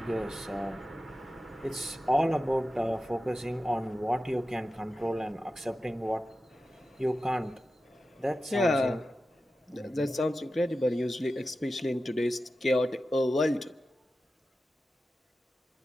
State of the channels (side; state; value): both; normal; correlation 0.93